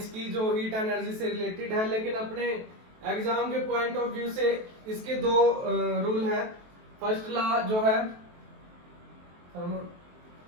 की, जो हीट एनर्जी से रिलेटेड है, लेकिन अपने एग्जाम के पॉइंट ऑफ व्यू से इसके दो रूल है। फर्स्ट लॉ जो है,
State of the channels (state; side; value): late; left; 23 ms